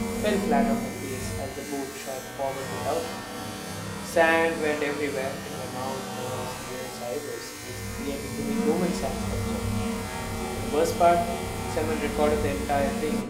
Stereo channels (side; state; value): both; identical; correlation 1.00